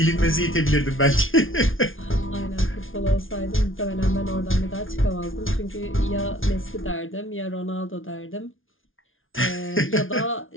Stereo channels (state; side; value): late; right; 0.58 ms